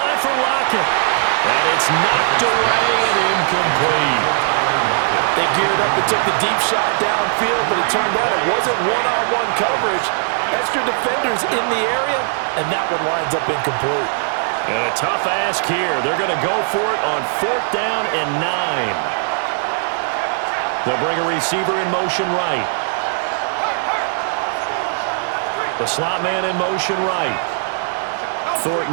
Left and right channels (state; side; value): silent; left; 67 dB below the other